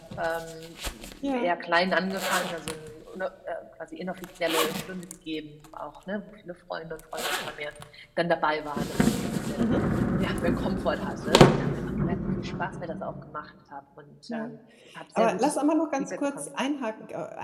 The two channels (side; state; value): both; identical; correlation 1.00